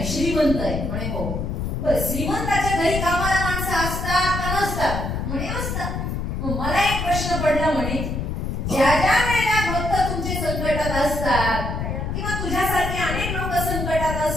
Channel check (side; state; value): left; noise; rumble, 3 dB below the sound